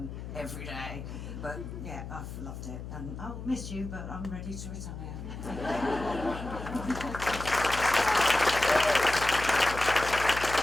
every day. But yeah, I've loved it. And I'll miss you, but I'm ready to retire.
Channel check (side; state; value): left; noise; hum, 9 dB below the sound